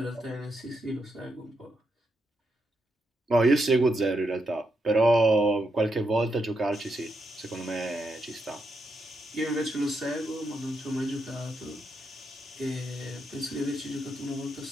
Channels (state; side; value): normal; both; correlation 0.82